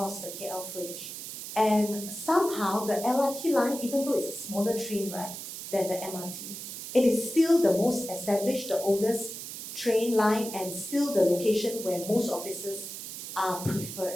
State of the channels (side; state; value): right; noise; hiss, 9 dB below the sound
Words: the KL Fringe. And somehow the LRT line, even though it's a smaller train, right, than the MRT, it is still the most established, the oldest train line, and still the location where most offices are